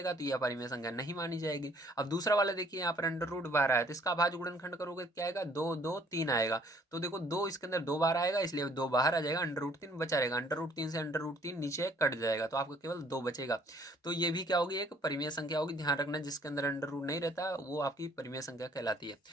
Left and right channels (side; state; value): both; normal; correlation 0.60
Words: तो ये अपरिमेय संख्या नहीं मानी जाएगी। अब दूसरा वाला देखिए, यहाँ पर अंडर रूट बाहर आया तो इसका अभाज्य गुणनखंड करोगे क्या आएगा, 2 2 3 आएगा। तो देखो 2 इसके अंदर 2 बार आएगा, इसलिए 2 बाहर आ जाएगा, अंडर रूट 3 बचा रहेगा, अंडर रूट 3 से अंडर रूट 3 नीचे कट जाएगा, तो आपको केवल 2 बचेगा। तो ये भी क्या होगी, एक परिमेय संख्या होगी, ध्यान रखना, जिसके अंदर अंडर रूट नहीं रहता वो आपकी परिमेय संख्या कहलाती है।